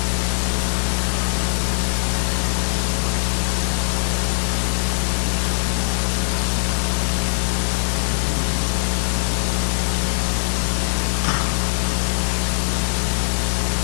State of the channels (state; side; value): silent; right; 65 dB below the other